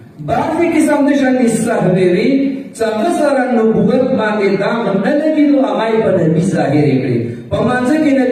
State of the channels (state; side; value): identical; both; correlation 1.00